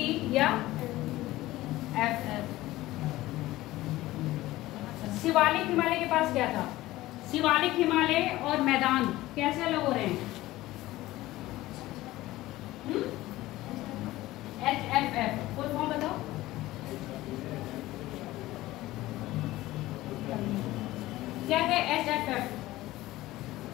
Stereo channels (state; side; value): quieter; right; 17.1 dB